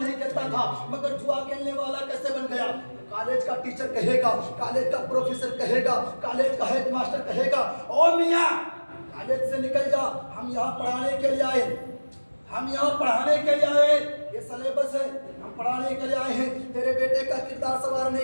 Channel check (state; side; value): inverted; both; correlation -1.00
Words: کھیلتا تھا مگر جوا کھیلنے والا کیسے بن گیا؟ کالج کا ٹیچر کہے گا، کالج کا پروفیسر کہے گا، کالج کا ہیڈ ماسٹر کہے گا او میاں کالج سے نکل جا، ہم یہاں پڑھانے کے لیے آئے، ہم یہاں پڑھانے کے لیے آئے، یہ سلیبس ہے، ہم پڑھانے کے لیے آئے ہیں، تیرے بیٹے کا کردار